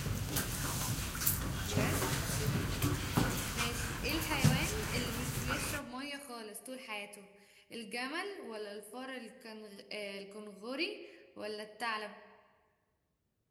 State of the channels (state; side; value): identical; both; correlation 1.00